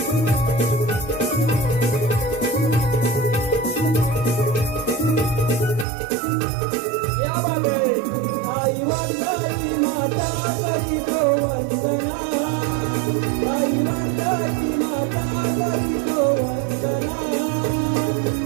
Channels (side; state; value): left; drops out; at 5.9 s